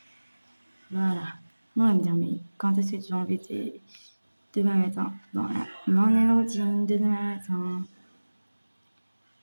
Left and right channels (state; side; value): inverted; both; correlation -1.00